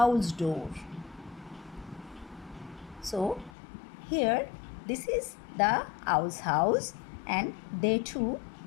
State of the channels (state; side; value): drops out; right; at 3.5 s